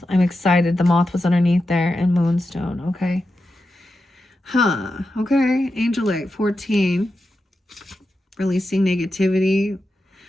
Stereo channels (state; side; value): normal; both; correlation 0.90